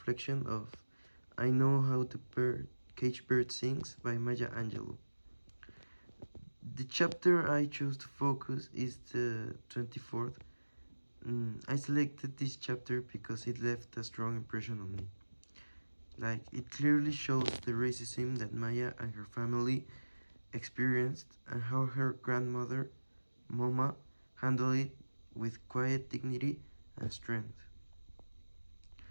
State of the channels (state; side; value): inverted; both; correlation -1.00